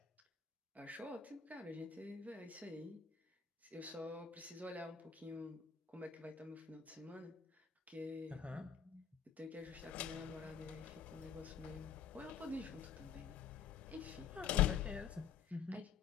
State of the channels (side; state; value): right; quieter; 7.4 dB